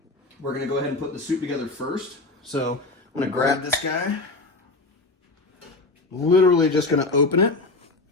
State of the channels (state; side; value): quieter; right; 3.3 dB